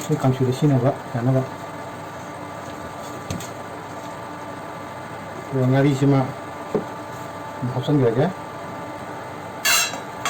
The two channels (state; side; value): identical; both; correlation 1.00